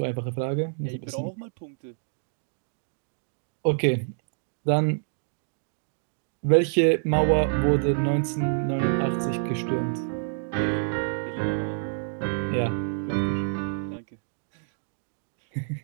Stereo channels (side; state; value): left; silent; digital silence